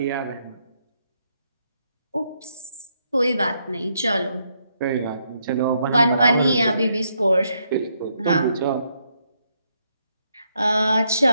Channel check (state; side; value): inverted; both; correlation -0.77